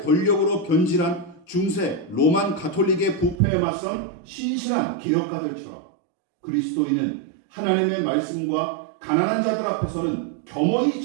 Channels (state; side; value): drops out; left; at 3.4 s